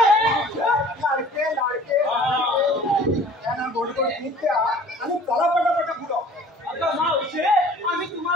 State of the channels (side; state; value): both; normal; correlation 0.49